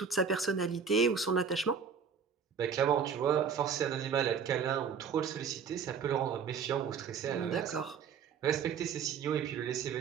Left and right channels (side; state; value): left; quieter; 6.6 dB